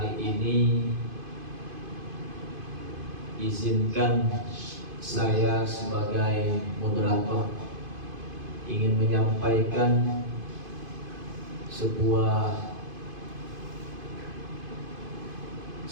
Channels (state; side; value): late; left; 2.5 ms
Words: ini izinkan saya sebagai moderator ingin menyampaikan sebuah